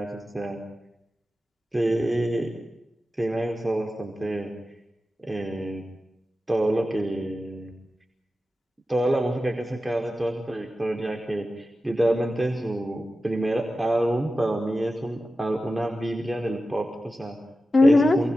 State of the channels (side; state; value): both; normal; correlation 0.93